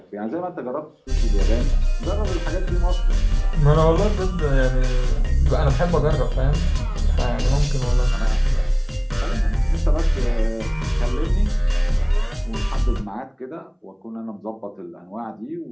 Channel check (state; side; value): identical; both; correlation 1.00